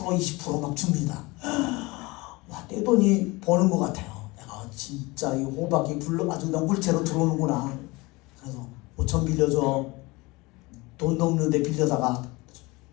막 줍니다. 와, 떼돈이 버는 것 같아요. 내가 진짜 이 호박이 아주 그냥 물체로 들어오는구나. 그래서 5천 빌려줘. 돈도 없는데 빌려다가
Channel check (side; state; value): right; quieter; 23.4 dB